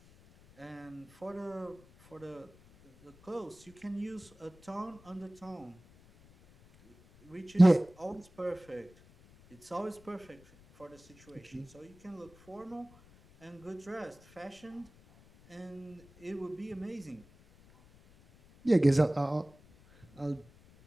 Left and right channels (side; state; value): left; noise; rumble, 25 dB below the sound